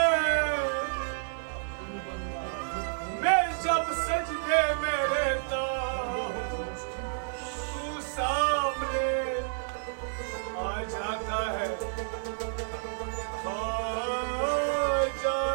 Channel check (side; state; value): left; silent; 58 dB below the other